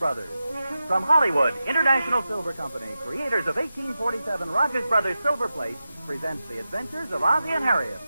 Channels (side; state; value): both; inverted; correlation -0.92